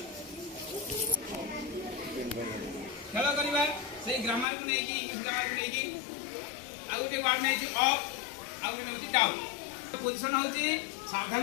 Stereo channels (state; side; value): drops out; right; at 4.5 s